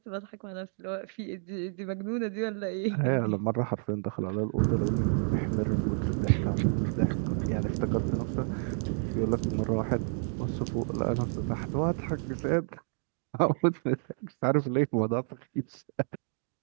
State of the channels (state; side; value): silent; left; 58 dB below the other